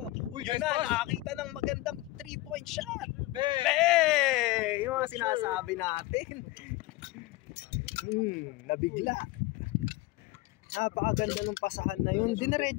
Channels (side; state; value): right; quieter; 19.2 dB